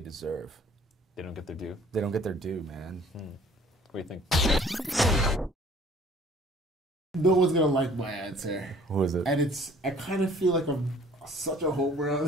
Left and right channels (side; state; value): both; normal; correlation 0.54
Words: They don't get their due. They don't get their due, man. What do you think? No one's gonna like my answer. Who is it? And I kind of feel like I'm such a homer